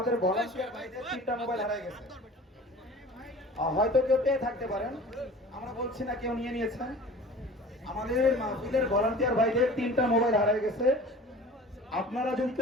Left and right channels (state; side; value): normal; both; correlation 0.42